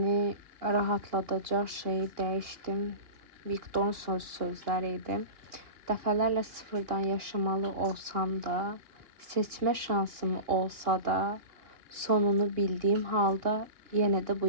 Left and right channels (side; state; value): left; late; 2.8 ms